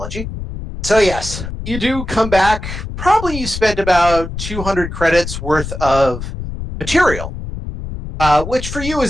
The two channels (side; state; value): left; noise; rumble, 8 dB below the sound